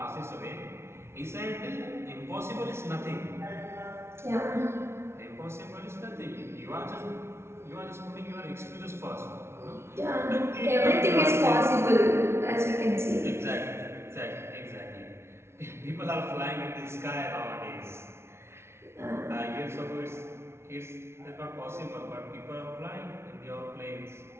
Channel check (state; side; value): late; left; 0.12 ms